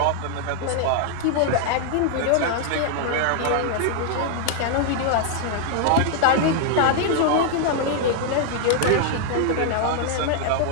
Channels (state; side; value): different; both; correlation -0.01